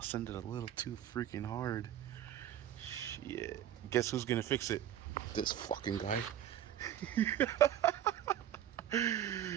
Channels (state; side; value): quieter; left; 11.2 dB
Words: ended a little too freaking hard. Shit. Guess who's gonna fix it? This fucking guy.